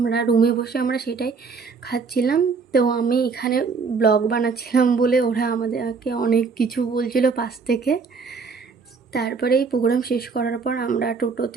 রুমে বসে আমরা সেটাই খাচ্ছিলাম। তো আমি এখানে ব্লগ বানাচ্ছিলাম বলে ওরা আমাদেরকে অনেক কিছু বলছিল পাশ থেকে। তারপরে এই প্রোগ্রাম শেষ করার পর আমরা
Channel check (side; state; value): left; quieter; 5.0 dB